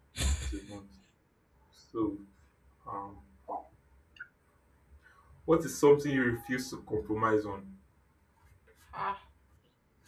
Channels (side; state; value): both; identical; correlation 1.00